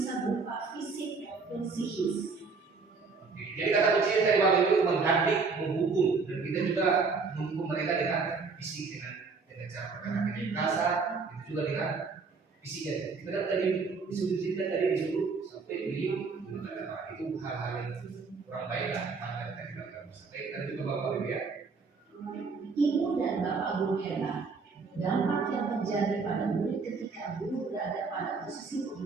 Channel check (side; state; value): left; quieter; 4.6 dB